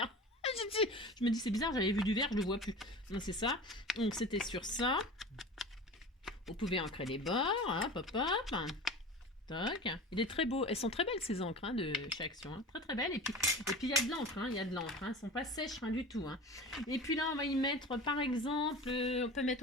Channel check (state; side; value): normal; both; correlation 0.35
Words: Je me dis, c'est bizarre, j'avais vu du vert, je le vois plus. Donc, c'est ça. Donc, c'était sur ça. Vous pouvez ancrer les bords. Hop, hop, hop. Toc. Il est très beau. Elles sont très belles ces encres hein, de chez Action. Hein. Très très belles. Et puis il y a de l'encre. Hein. Il y a de l'encre. Hein. Elles ne sont pas sèches rien du tout. Hein. Et puis là, on va y mettre par exemple, on peut